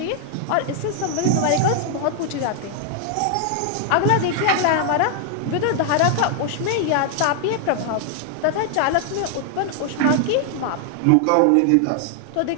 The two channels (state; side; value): different; both; correlation 0.00